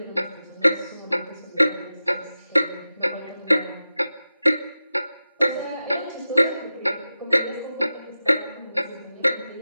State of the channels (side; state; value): both; inverted; correlation -0.93